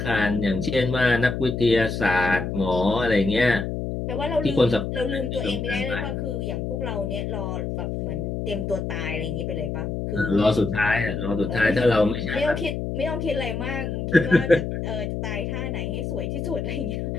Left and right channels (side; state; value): left; noise; hum, 3 dB below the sound